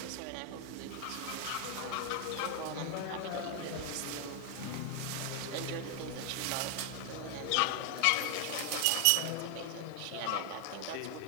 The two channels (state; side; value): different; both; correlation 0.00